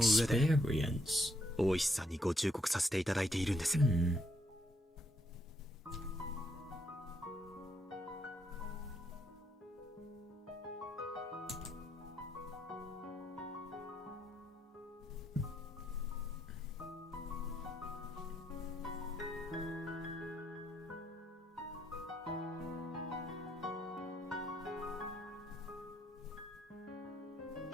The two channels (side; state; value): both; normal; correlation 0.75